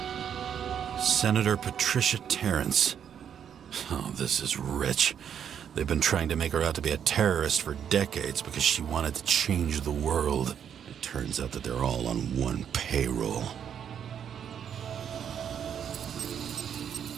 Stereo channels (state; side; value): quieter; left; 8.5 dB